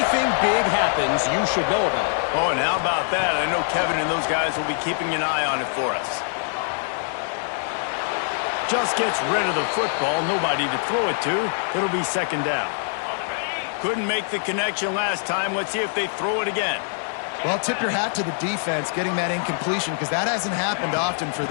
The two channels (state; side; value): silent; right; digital silence